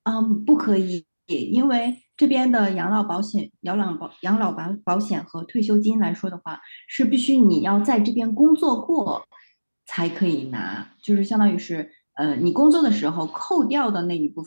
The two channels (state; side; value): inverted; both; correlation -1.00